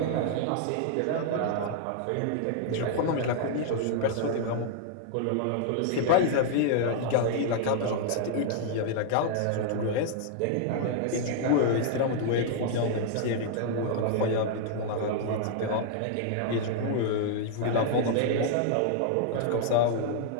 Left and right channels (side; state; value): both; different; correlation -0.01